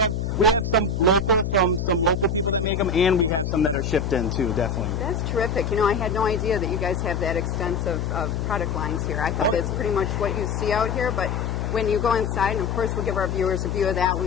we have some local from some local people that make them, and we have some that are shipped in too. Definitely. That's terrific. You know, I had no idea that you guys have that extensive of product lines here. I thought it's pretty much what you see out here, but when you go inside, and of course we'll give our viewers a view of that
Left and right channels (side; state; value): left; noise; hum, 1 dB below the sound